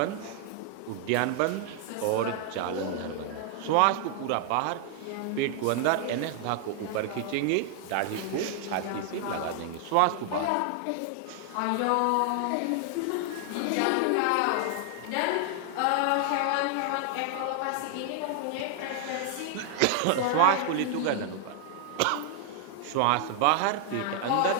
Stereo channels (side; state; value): both; different; correlation 0.00